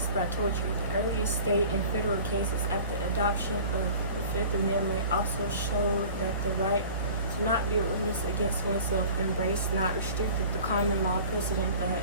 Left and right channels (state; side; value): inverted; both; correlation -0.44